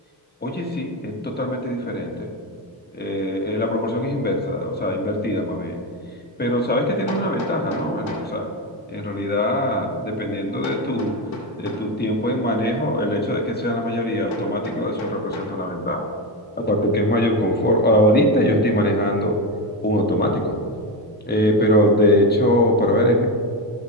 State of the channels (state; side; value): normal; both; correlation 0.13